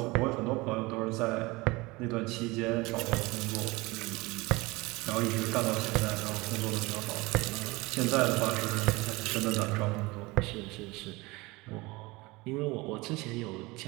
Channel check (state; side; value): quieter; left; 22.8 dB